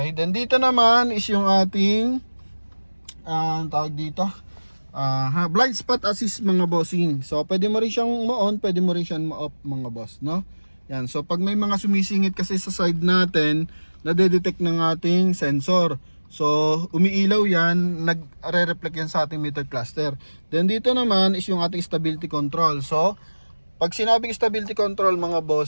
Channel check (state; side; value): inverted; both; correlation -1.00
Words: then dito naman is yung ating tawag dito, blind spot assist mga bossing. So pwede mo rin siyang ma-on, pwede mo rin siyang ma-off mga boss, no? Yan, so pag may mga sumisingit kasi sa side natin, nade-detect ng ating sensor. So umiilaw yan, nagre-reflect yan sa ating meter cluster. Then dito naman is yung ating stability control. So pag sinabing stability control mga